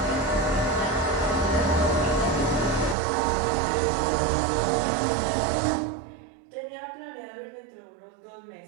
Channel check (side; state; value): left; drops out; at 3.0 s